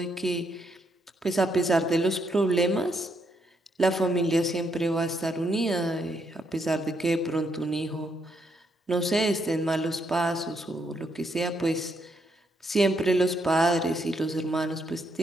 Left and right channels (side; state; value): both; normal; correlation 0.76